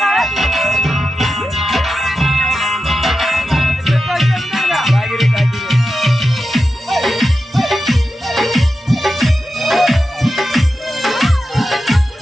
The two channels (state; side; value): normal; both; correlation 0.91